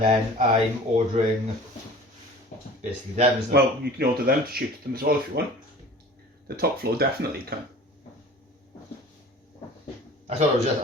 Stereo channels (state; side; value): normal; both; correlation 0.43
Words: I'm ordering basically them, isn't it? Well, you can order them to shoot at them as well if you want. The top floor definitely can. I thought